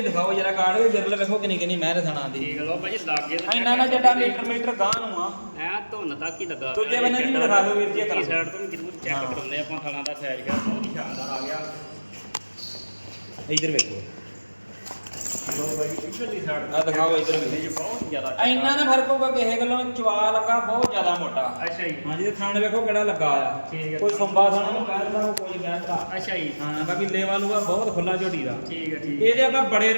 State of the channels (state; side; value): inverted; both; correlation -1.00